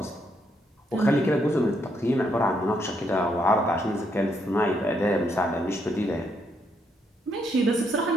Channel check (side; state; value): both; normal; correlation 0.75